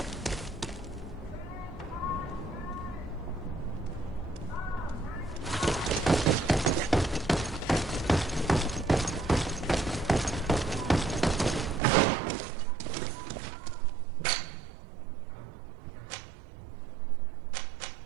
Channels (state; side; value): drops out; left; at 11.8 s